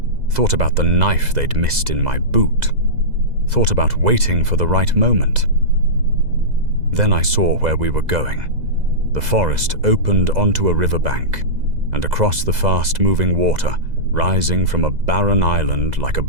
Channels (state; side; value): late; left; 2.0 ms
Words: thought about the knife they'd missed in my boot, thought about waiting for the right moment. Then I saw where we were going. The forest opened onto a riverbank, and across the fast-moving water, rising from a barren island like a